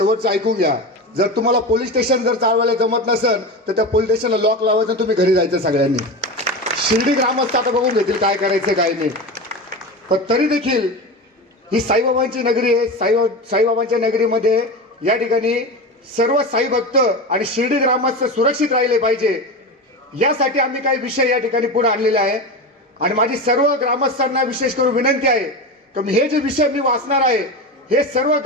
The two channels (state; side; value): normal; both; correlation 0.23